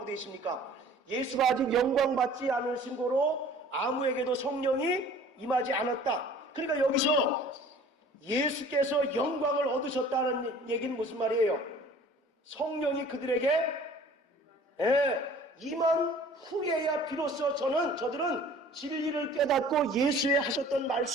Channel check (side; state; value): both; normal; correlation 0.49